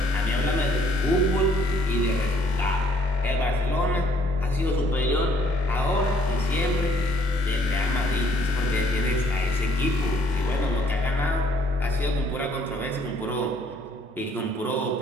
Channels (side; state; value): both; normal; correlation 0.63